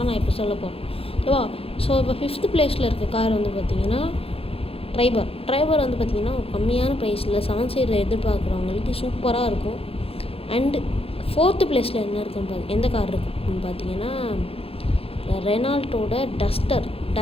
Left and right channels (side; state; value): right; late; 0.28 ms